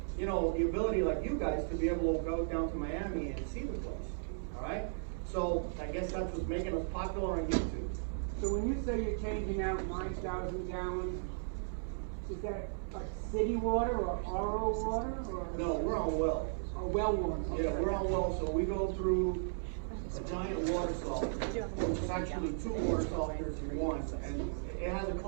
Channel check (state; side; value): silent; left; digital silence